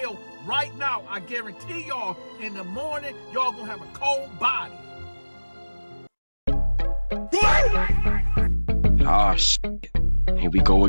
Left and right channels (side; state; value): both; inverted; correlation -1.00